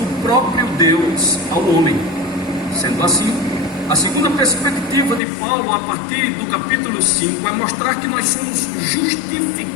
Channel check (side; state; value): right; drops out; at 5.2 s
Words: próprio Deus ao homem. Sendo assim, a segunda perspectiva de Paulo, a partir do capítulo 5, é mostrar que nós somos